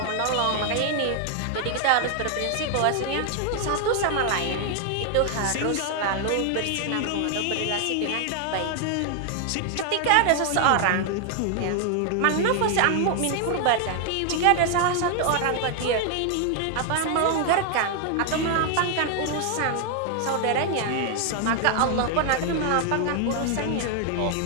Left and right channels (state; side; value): different; both; correlation 0.00